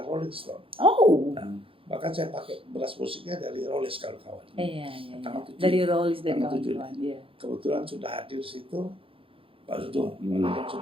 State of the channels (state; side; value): late; left; 0.26 ms